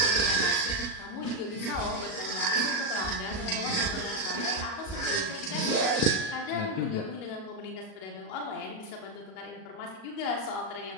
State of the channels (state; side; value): late; right; 37 ms